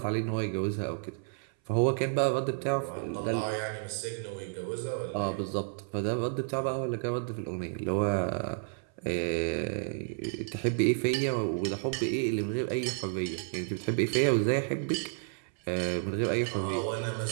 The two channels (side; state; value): left; silent; 57 dB below the other